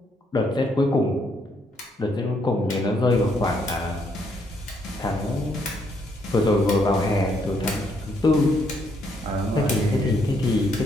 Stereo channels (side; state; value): both; normal; correlation 0.73